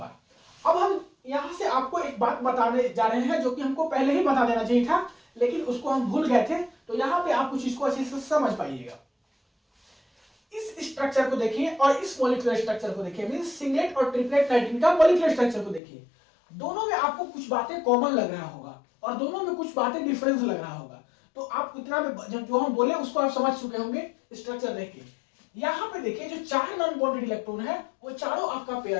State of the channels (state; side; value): drops out; right; at 15.8 s